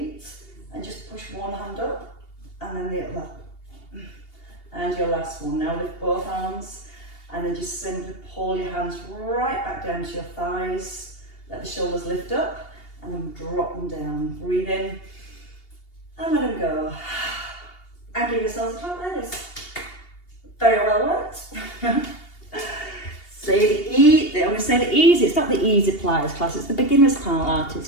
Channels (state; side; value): late; right; 2.8 ms